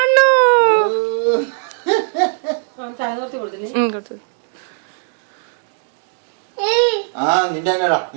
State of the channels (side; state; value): left; silent; digital silence